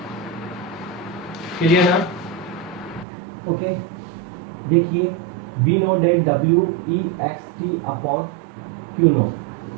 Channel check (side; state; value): left; drops out; at 3.1 s